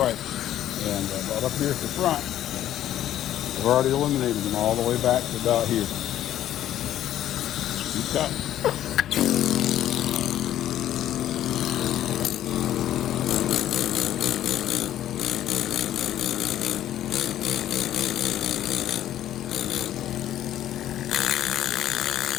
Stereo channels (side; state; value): right; quieter; 12.1 dB